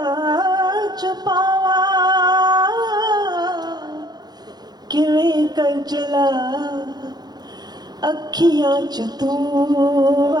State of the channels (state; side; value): late; left; 0.20 ms